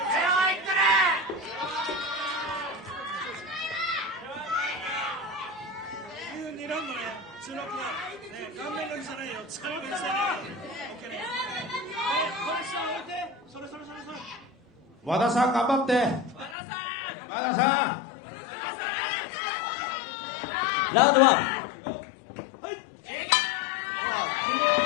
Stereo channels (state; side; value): drops out; right; at 16.6 s